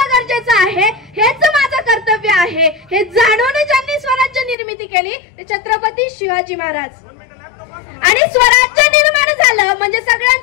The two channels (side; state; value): right; drops out; at 4.5 s